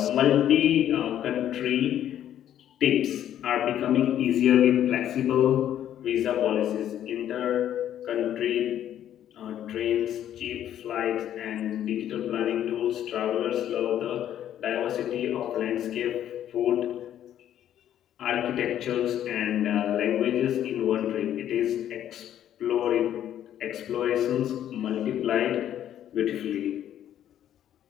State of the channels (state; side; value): quieter; right; 10.9 dB